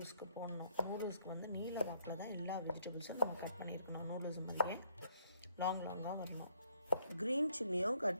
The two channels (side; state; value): both; inverted; correlation -0.71